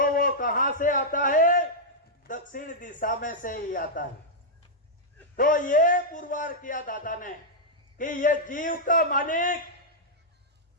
वो कहां से आता है? दक्षिण दिशा में से ही आता है। तो ये पुरवार किया दादा ने कि ये जीव का मालिक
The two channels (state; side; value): normal; both; correlation -0.07